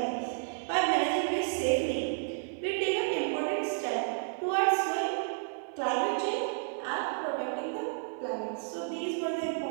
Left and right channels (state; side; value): silent; left; 57 dB below the other